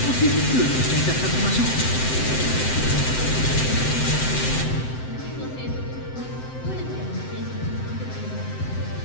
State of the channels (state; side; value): late; right; 7.8 ms